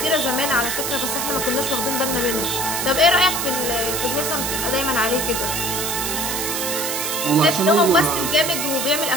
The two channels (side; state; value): right; noise; hiss, 1 dB below the sound